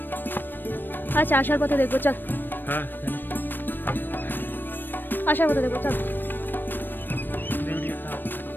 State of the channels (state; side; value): late; right; 0.094 ms